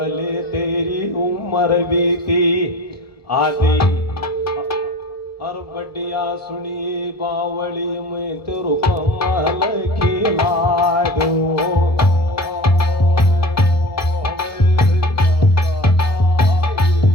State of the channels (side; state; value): right; late; 1.1 ms